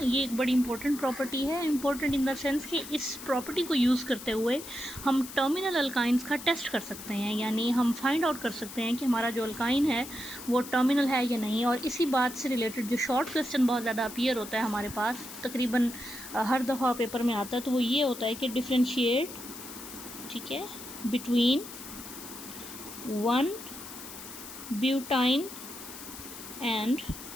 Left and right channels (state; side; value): noise; left; hiss, 12 dB below the sound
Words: एक बड़ी इंपॉर्टेंट प्रॉपर्टी है। इंपॉर्टेंट इन द सेंस कि इस प्रॉपर्टी को यूज़ करते हुए हम टर्मिनल अल्काइंस का टेस्ट कर सकते हैं, यानी हम फाइंड आउट कर सकते हैं कि हमारा जो अल्काइन है वो टर्मिनल है या नहीं। और इसी बात से रिलेटेड जो शॉर्ट क्वेश्चन बहुत ज़्यादा अपीयर होता है हमारे पास, तकरीबन हर दफ़ा पेपर में आता है, तो वो ये होता है कि डिफ्रेंशिएट, ठीक है, बिटवीन 1 ब्यूटाइन एंड